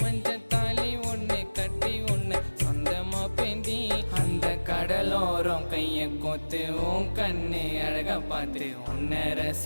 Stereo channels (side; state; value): both; inverted; correlation -1.00